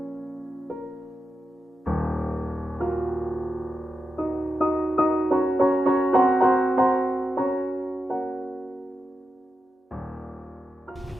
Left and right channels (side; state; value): both; normal; correlation 0.89